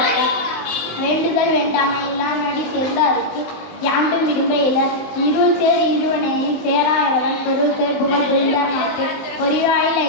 வேண்டுதல் வேண்டாமை எல்லாம் நடி சேர்ந்தாருக்கு யாண்டும் விரும்ப இல. இருள் சேர் இருவனையை சேராயவன் பொருள் சேர் புகழ் புரிந்தார்க்கு பொறிவாயில்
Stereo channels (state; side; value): late; right; 19 ms